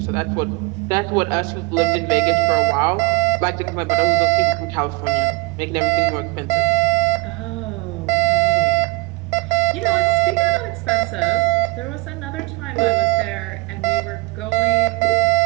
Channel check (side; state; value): left; quieter; 24.4 dB